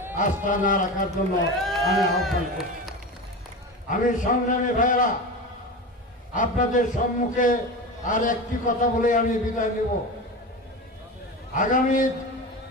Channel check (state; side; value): normal; both; correlation 0.26